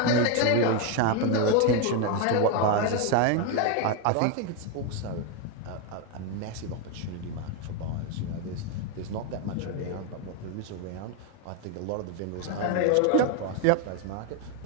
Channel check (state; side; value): different; both; correlation 0.02